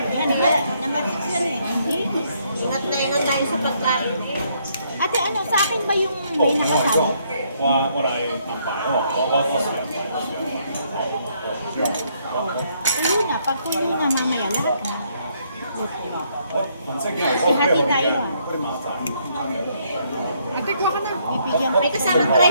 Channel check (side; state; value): both; inverted; correlation -0.71